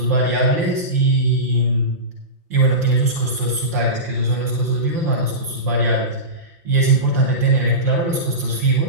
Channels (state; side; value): late; left; 5.7 ms